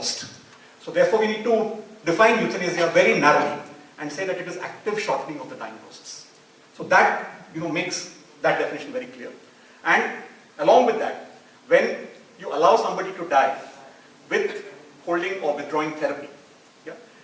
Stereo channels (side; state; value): both; identical; correlation 1.00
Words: So therefore we need to define euthanasia very narrowly and say that it is active shortening of the dying process. So that makes that definition very clear. And along with that, when you allow somebody to die with holding or withdrawing therapy, yeah,